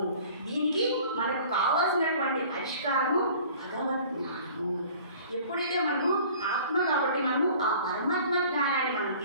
దీనికి మనకు కావాల్సినటువంటి పరిష్కారము భగవద్ జ్ఞానము। ఎప్పుడైతే మనము ఆత్మ కాబట్టి మనము ఆ పరమాత్మ జ్ఞానాన్ని మనం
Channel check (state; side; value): inverted; both; correlation -0.48